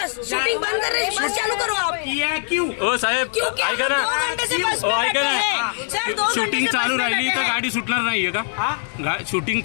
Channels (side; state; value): right; silent; 59 dB below the other